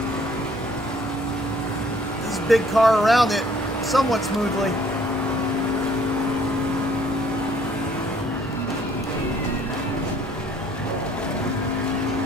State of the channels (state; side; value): normal; both; correlation 0.59